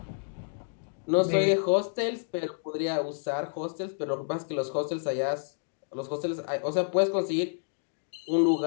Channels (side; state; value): right; silent; digital silence